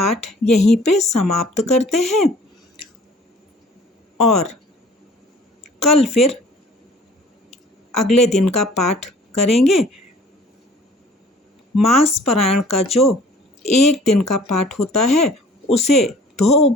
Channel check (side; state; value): both; normal; correlation 0.51